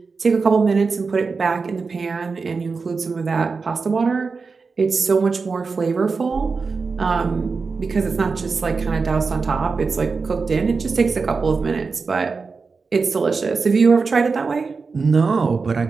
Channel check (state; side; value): quieter; left; 4.6 dB